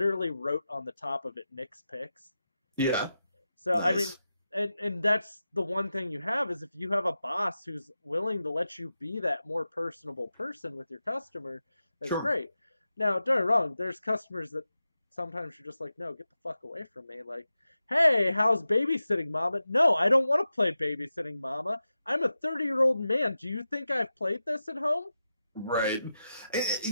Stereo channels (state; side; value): inverted; both; correlation -0.91